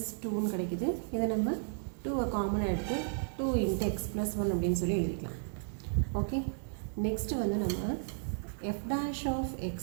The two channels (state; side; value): silent; left; digital silence